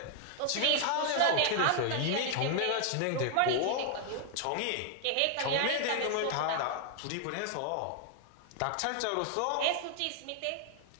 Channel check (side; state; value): both; different; correlation 0.00